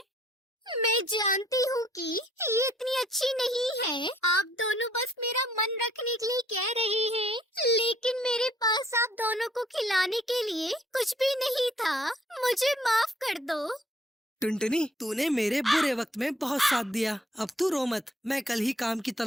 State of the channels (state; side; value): normal; both; correlation 0.64